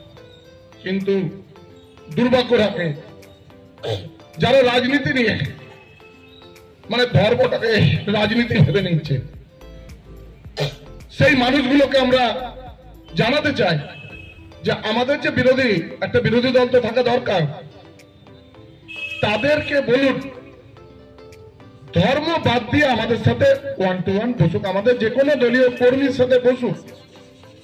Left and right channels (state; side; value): identical; both; correlation 1.00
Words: কিন্তু দুর্ভাগ্য রাখে যারা রাজনীতি নিয়ে, মানে ধর্মটাকে রাজনীতি ভেবে নিচ্ছে, সেই মানুষগুলোকে আমরা জানাতে চাই যে আমাদের যে বিরোধী, একটা বিরোধী দল তো থাকা দরকার, তাদেরকে বলুন ধর্ম বাদ দিয়ে আমাদের সাথে 1-to-1 বসুক, আমাদের যে কোনো দলীয় কর্মীর সাথে বসুক,